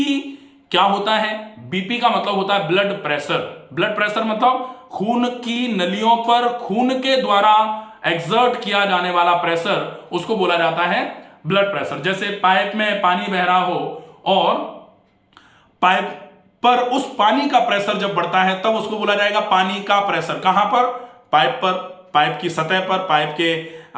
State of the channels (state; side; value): identical; both; correlation 1.00